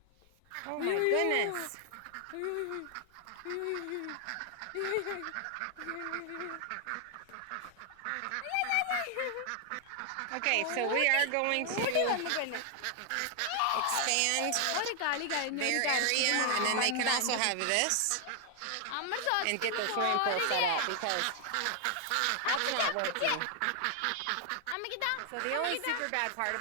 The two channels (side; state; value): both; different; correlation 0.00